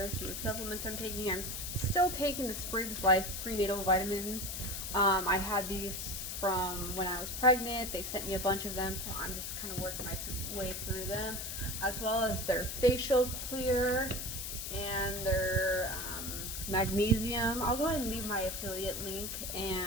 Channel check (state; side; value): noise; left; hiss, 5 dB below the sound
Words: some of the supplements I'm taking. I'm still taking the Spriggs Life prenatal vitamins. I had these from when I was pregnant. They sent me a bunch of them, so I'm just kind of working my way through them, as well as their facial clear and their magnesium. I'll go ahead and leave my affiliate link